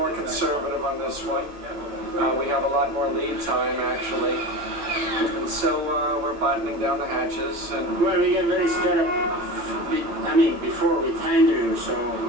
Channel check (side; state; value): left; late; 8.9 ms